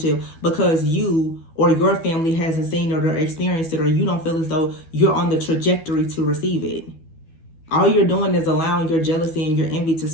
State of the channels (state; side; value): late; right; 12 ms